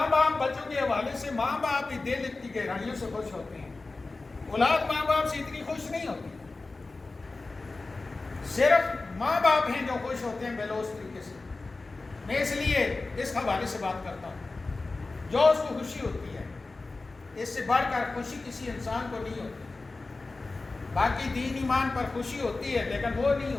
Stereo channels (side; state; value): right; quieter; 3.5 dB